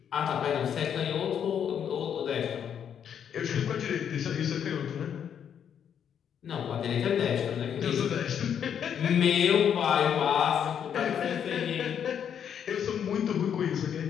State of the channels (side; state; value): right; quieter; 8.5 dB